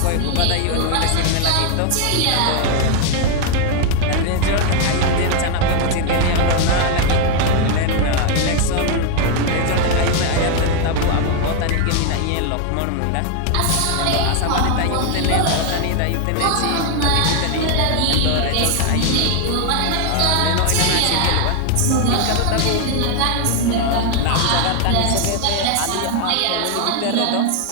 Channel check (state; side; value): different; both; correlation 0.01